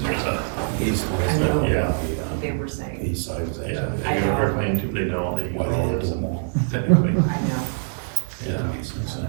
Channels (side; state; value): left; silent; 63 dB below the other